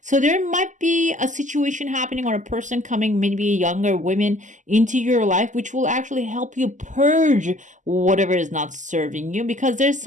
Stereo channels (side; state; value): left; late; 0.36 ms